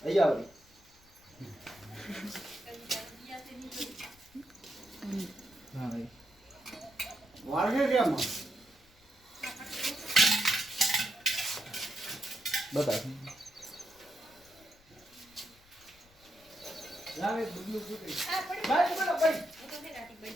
અહીંયા આવી હા ભાઈ વાળગે કેમ બતા જાવે ડુબલું ફૂટી. ભાઈ બોલો ભાઈ.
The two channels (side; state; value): left; noise; rumble, 28 dB below the sound